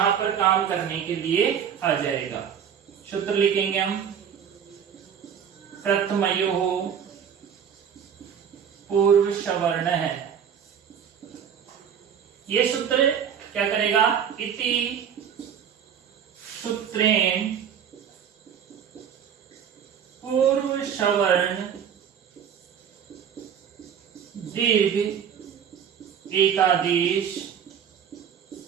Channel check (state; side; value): quieter; left; 8.1 dB